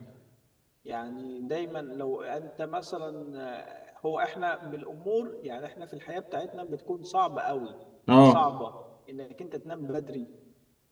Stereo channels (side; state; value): both; identical; correlation 1.00